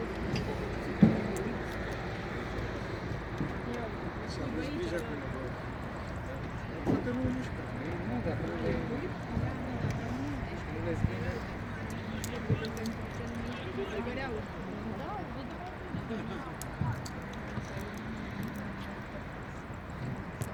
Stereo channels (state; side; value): identical; both; correlation 1.00